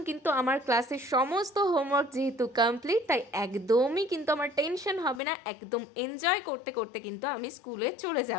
কিন্তু আমার ক্লাসের সমস্ত হোমওয়ার্ক যেহেতু কমপ্লিট, তাই একদমই কিন্তু আমার টেনশন হবে না। একদম এনজয় করতে করতে কিন্তু আমি স্কুলে চলে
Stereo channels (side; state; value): right; drops out; at 5.2 s